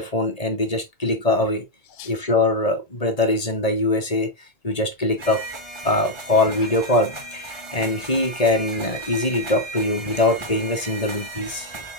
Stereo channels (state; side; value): late; right; 1.8 ms